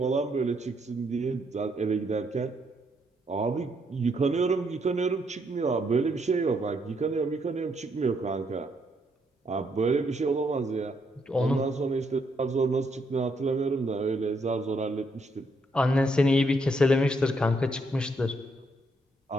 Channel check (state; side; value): normal; both; correlation 0.74